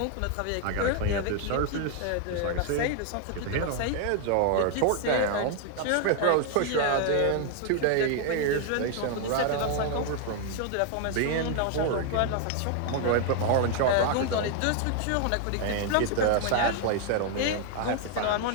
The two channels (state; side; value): different; both; correlation 0.00